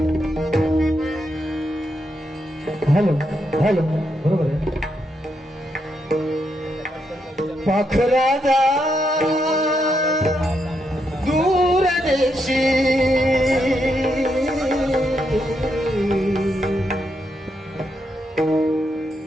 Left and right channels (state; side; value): normal; both; correlation 0.80